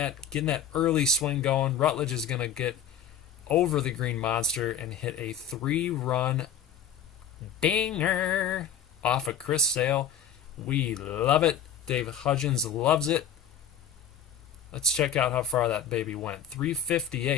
early swing going. Rutledge is gonna get over the green monster and hit a 3-run dinger off of Chris Sale. We love it. David Hudgens loves it. Let's check out how far that baby went.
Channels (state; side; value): quieter; right; 8.0 dB